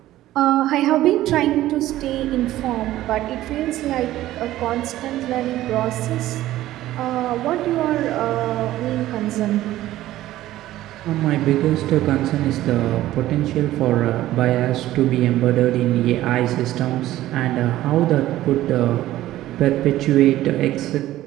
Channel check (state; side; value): quieter; left; 14.8 dB